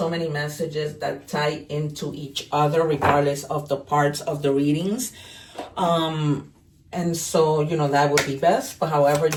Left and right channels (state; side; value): identical; both; correlation 1.00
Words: many messages that tie into each other regardless of the parts of the readings. And so, you know, that would be best, but however,